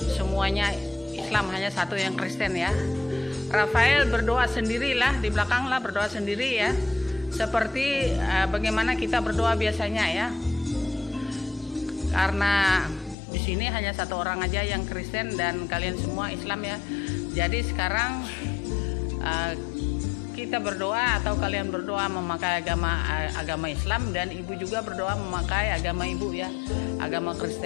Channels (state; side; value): drops out; right; at 13.2 s